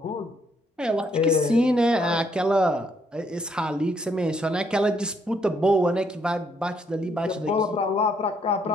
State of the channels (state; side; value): normal; both; correlation 0.71